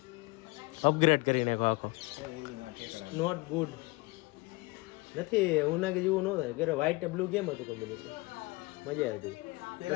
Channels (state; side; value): quieter; right; 23.4 dB